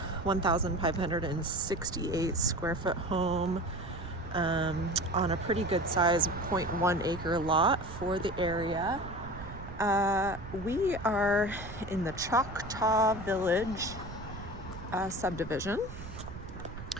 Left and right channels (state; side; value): noise; right; rumble, 12 dB below the sound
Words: 1,568 square foot home on a pretty good size 0.1 acre lot for the area. We are in the Choctaw Village subdivision,